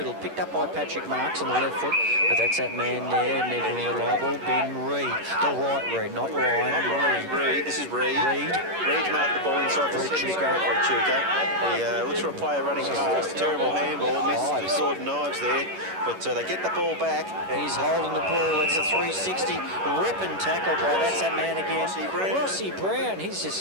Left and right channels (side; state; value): left; late; 11 ms